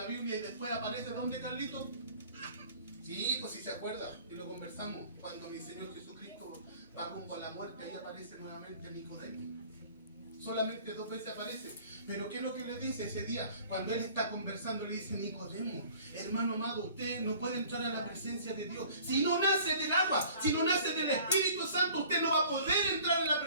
Biblia y después aparece ¿dónde, Carlito? Sí, pues si se acuerda, y lo conversamos, cuando mi Señor Jesucristo va rumbo a la muerte, ahí aparece nuevamente Nicodemo. Solamente 2 veces aparece. Pero ¿qué es lo que le dice ese día? Cuando él está conversando, le dice: Nicodemo, hermano amado, usted no puede entrar a la presencia de Dios. Si no nace del agua, si no nace del Espíritu Santo, usted no va a poder entrar en la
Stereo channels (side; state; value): both; inverted; correlation -0.49